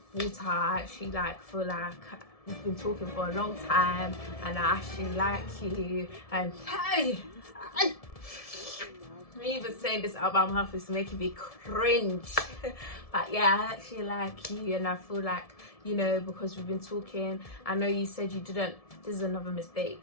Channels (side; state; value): right; late; 1.7 ms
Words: Water, I actually, like, feel like we've been talking for a long time, and I actually like you, and hey, me even saying this out of my mouth is making me cringe. But yeah, I actually like you, and I feel like, you know, because we've been talking, I know you said you didn't, this is another mistake.